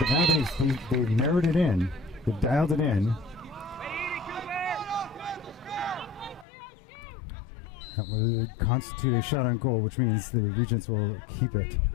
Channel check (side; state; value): right; drops out; at 6.5 s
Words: now they've narrowed it in. They've dialed it in. That will constitute a shot on goal, which means the Regents will keep it.